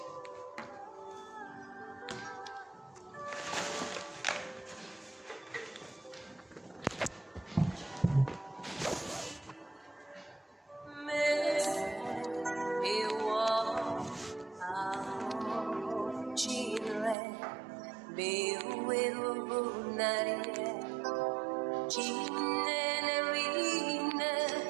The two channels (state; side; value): drops out; left; at 17.2 s